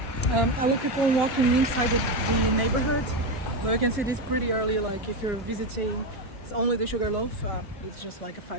I will keep on walking inside the neighborhood, but you can see this pretty early. Like if you're visiting, it's only the Sugarloaf. It's just like a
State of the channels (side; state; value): both; normal; correlation 0.12